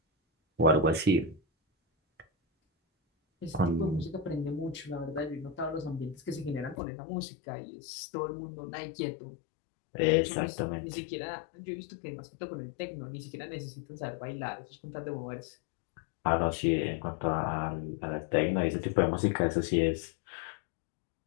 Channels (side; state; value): right; drops out; at 6.8 s